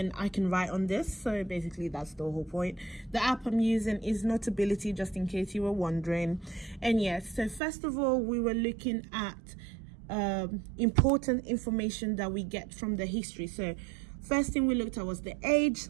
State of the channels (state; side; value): drops out; left; at 7.6 s